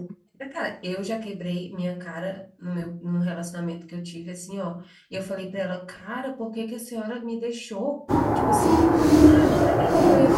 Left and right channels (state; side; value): identical; both; correlation 1.00